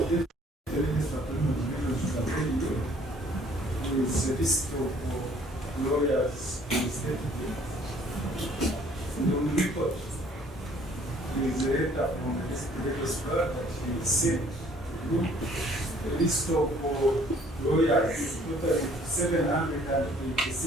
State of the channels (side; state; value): both; normal; correlation 0.58